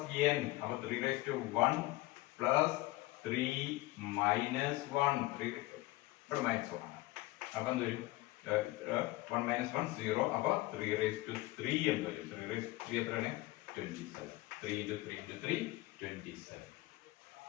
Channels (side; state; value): right; quieter; 19.5 dB